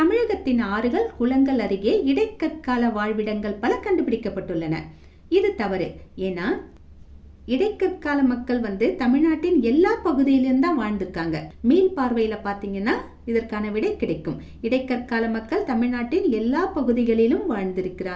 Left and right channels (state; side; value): identical; both; correlation 1.00